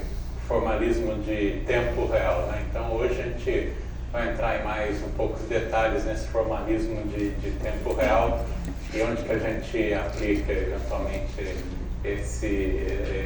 formalismo de tempo real, né? Então hoje a gente vai entrar em mais um pouco de detalhes nesse formalismo de tempo real e onde que a gente aplica eventualmente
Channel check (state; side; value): identical; both; correlation 1.00